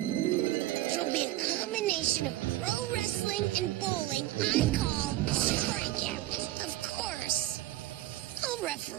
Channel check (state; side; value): quieter; left; 15.6 dB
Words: It'll be a combination of pro wrestling and bowling I call Strikeout. Of course, I'll